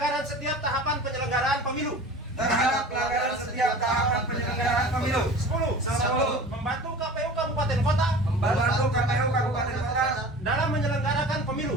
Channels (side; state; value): both; normal; correlation 0.39